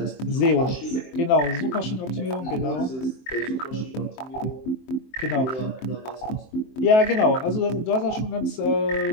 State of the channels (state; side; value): late; right; 23 ms